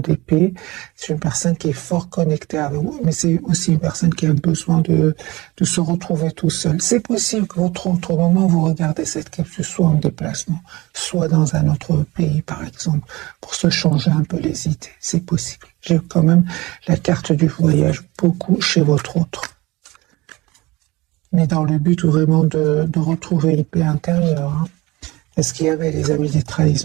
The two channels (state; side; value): quieter; left; 21.0 dB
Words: d'épée, c'est une personne qui est fort connectée à vous, mais c'est aussi une personne qui a besoin de se retrouver tout seul. C'est possible que votre autre moment, vous regardez cette capsule soit en déplacement, soit dans un autre pays, par exemple, pour se changer un peu les idées. C'est possible. J'ai quand même la carte du voyage beaucoup chez votre autre. Mais dans le but vraiment de retrouver une paix intérieure. Hein. Est-ce qu'il y avait, les amis, des